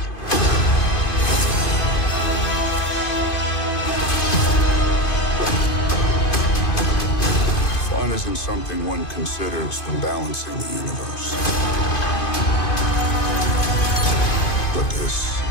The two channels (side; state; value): right; late; 2.5 ms